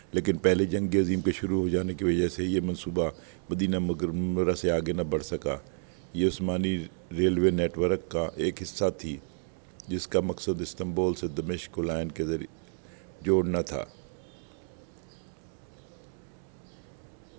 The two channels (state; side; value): silent; left; digital silence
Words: لیکن پہلے جنگ عظیم کے شروع ہو جانے کی وجہ سے یہ منصوبہ مدینہ منورہ سے آگے نہ بڑھ سکا۔ یہ عثمانی ریلوے نیٹ ورک کا ایک حصہ تھی جس کا مقصد استنبول سے دمشق کو لائن کے ذریعے جوڑنا تھا۔